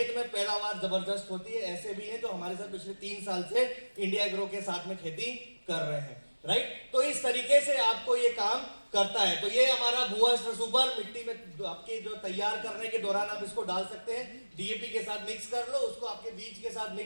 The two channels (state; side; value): inverted; both; correlation -1.00